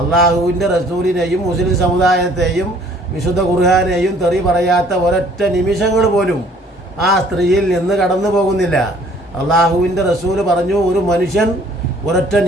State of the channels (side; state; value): both; normal; correlation 0.57